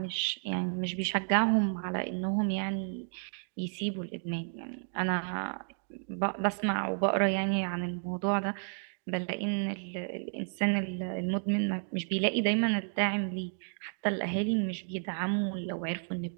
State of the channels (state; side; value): silent; left; 56 dB below the other